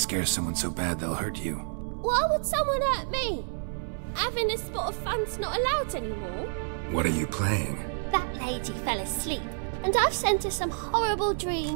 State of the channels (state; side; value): silent; left; 59 dB below the other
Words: someone so bad they'll hurt you. Why would someone hurt me? Having a spot of fun's not allowed anymore. What are you playing? That lady fell asleep, and I've sent her some horrible